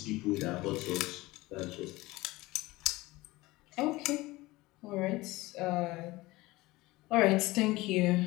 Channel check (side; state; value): right; quieter; 20.1 dB